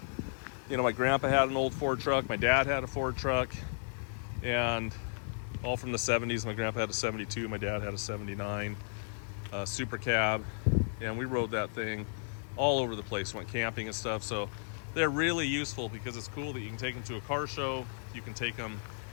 my grandpa had an old Ford truck, my dad had a Ford truck, and all from the 70s. My grandpa had a 72, my dad had a 79 Super Cab, and we rode that thing all over the place, went camping and stuff. So they're really useful because it's cool that you can take them to a car show. You can take them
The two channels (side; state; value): right; silent; digital silence